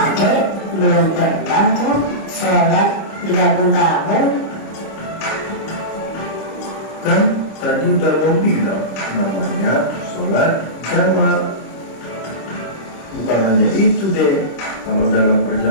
belum pernah tuh sholat digabung-gabung. Kan tadi udah abang bilang namanya sholat jamak. Bukan hanya itu deh, kalau dalam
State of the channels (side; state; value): right; late; 26 ms